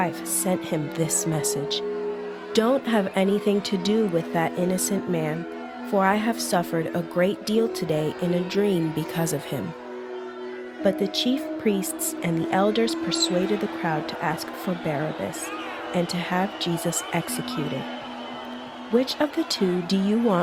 sent him this message: "Don't have anything to do with that innocent man, for I have suffered a great deal today in a dream because of him." But the chief priests and the elders persuaded the crowd to ask for Barabbas and to have Jesus executed. "Which of the two do you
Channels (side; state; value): both; identical; correlation 1.00